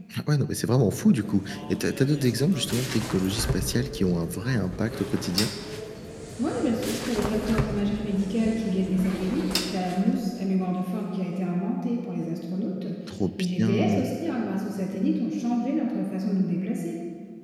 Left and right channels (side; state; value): both; identical; correlation 1.00